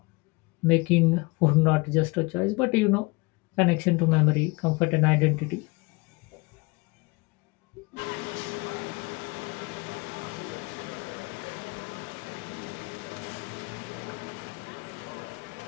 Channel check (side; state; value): right; quieter; 25.8 dB